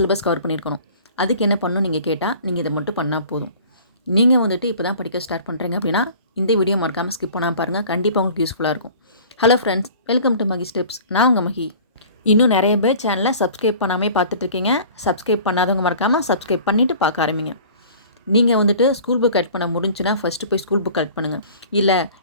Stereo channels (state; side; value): inverted; both; correlation -0.46